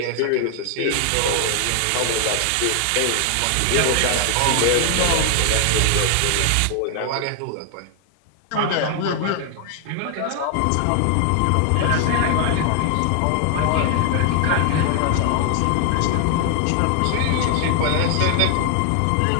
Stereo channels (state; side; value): different; both; correlation 0.00